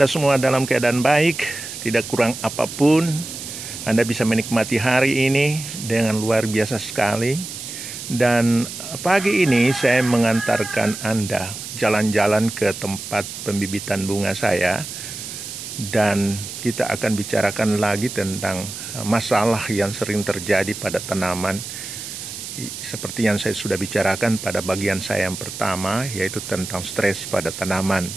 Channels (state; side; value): noise; right; hiss, 9 dB below the sound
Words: semua dalam keadaan baik, tidak kurang apapun. Anda bisa menikmati hari ini dengan luar biasa sekali. Dan pagi ini saya mengantarkan Anda jalan-jalan ke tempat pembibitan bunga saya. Dan kita akan bicarakan lagi tentang masalah yang sering terjadi pada tanaman. Seperti yang saya sudah bicarakan pada bagian saya yang pertama, yaitu tentang stres pada tanaman.